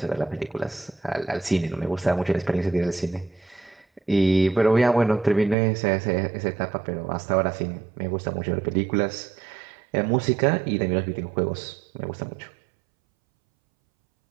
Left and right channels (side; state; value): left; drops out; at 5.6 s